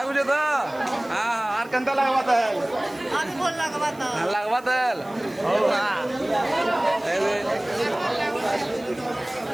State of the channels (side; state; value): right; noise; hiss, 26 dB below the sound